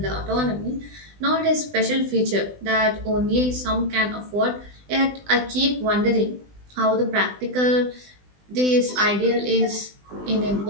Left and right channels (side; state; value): left; late; 20 ms